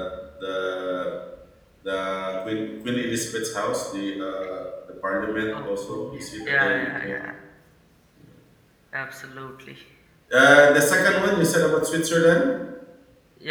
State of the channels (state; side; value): identical; both; correlation 1.00